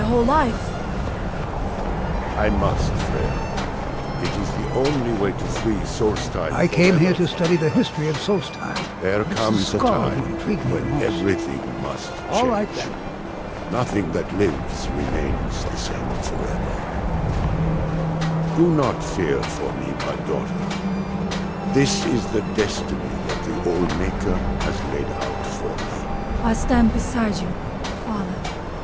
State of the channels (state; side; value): identical; both; correlation 1.00